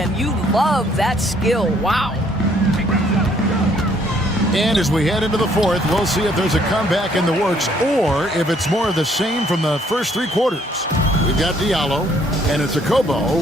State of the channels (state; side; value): normal; both; correlation 0.65